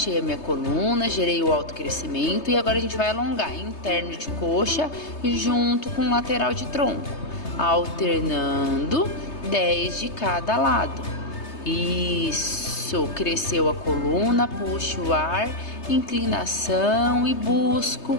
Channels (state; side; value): late; right; 3.3 ms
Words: a minha coluna, gerei o autocrescimento e agora a gente vai alongar interno de coxa junto com lateral de tronco, alternando 10 de cada lado. Isso, cresceu a coluna, puxo o ar, inclinação e busco